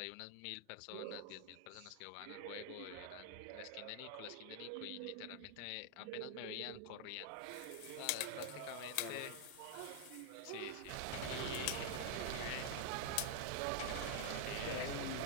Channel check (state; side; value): different; both; correlation 0.00